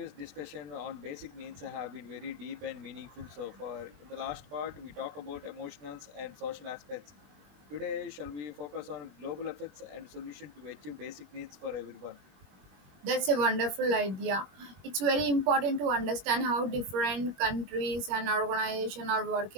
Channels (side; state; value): left; late; 21 ms